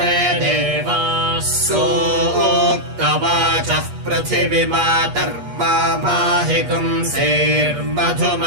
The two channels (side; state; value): left; late; 8.4 ms